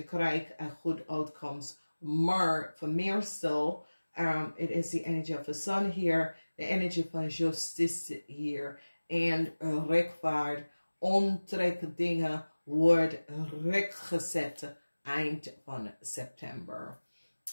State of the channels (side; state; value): both; inverted; correlation -1.00